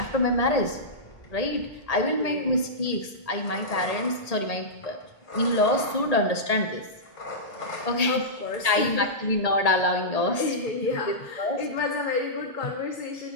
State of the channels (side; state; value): right; late; 1.8 ms